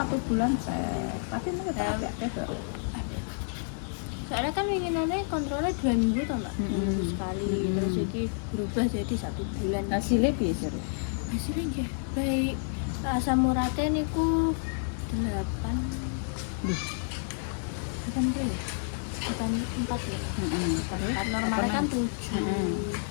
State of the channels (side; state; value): right; silent; digital silence